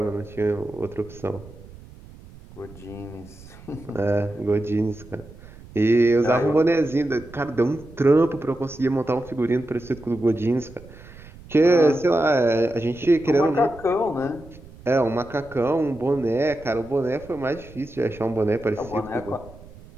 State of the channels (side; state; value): right; noise; rumble, 19 dB below the sound